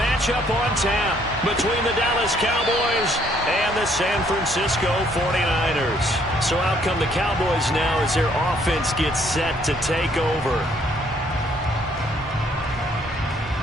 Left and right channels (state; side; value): normal; both; correlation 0.66